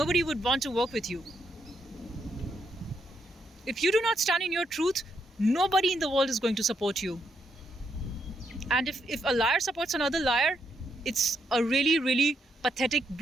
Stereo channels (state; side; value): normal; both; correlation 0.78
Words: would want to work with you. If you do not stand in your truth, nobody in the world is going to support you. And if a liar supports another liar, it's a really, really pathetic,